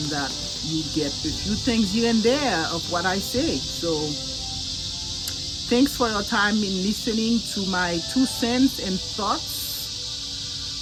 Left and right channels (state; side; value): identical; both; correlation 1.00